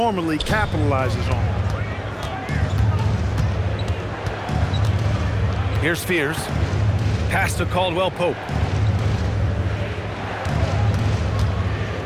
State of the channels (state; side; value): identical; both; correlation 1.00